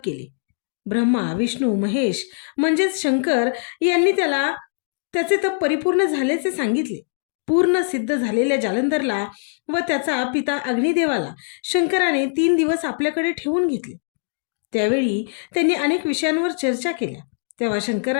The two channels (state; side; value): silent; right; digital silence